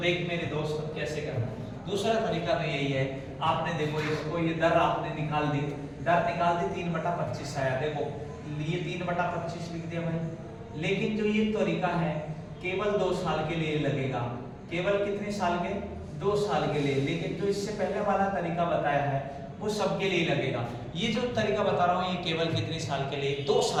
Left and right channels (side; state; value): both; identical; correlation 1.00